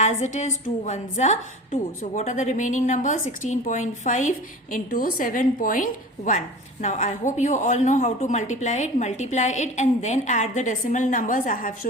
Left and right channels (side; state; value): both; normal; correlation 0.36